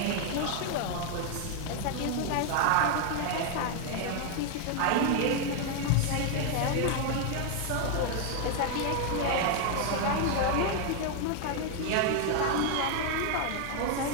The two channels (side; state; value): both; different; correlation 0.00